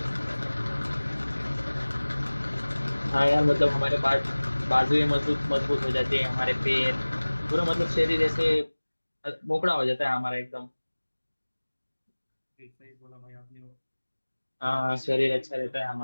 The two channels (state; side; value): inverted; both; correlation -1.00